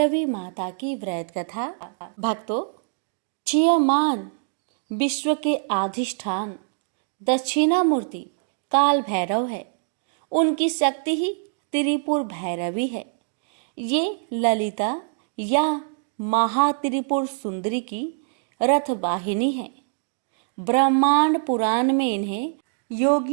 माता की व्रत कथा। भक्तों, चियमान विश्व के अधिष्ठान दक्षिणामूर्ति काल भैरव है। उनकी शक्ति ही त्रिपुर भैरवी है। ये ललिता या महात्रिपुर सुंदरी की रथ वाहिनी है। ब्रह्मांड पुराण में इन्हें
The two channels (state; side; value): silent; left; digital silence